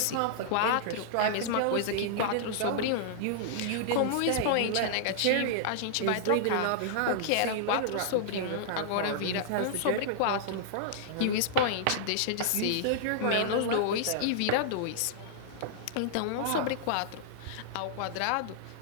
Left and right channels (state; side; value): different; both; correlation -0.01